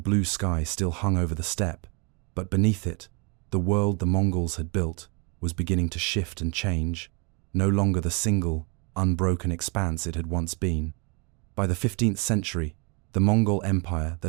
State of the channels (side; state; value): left; quieter; 32.3 dB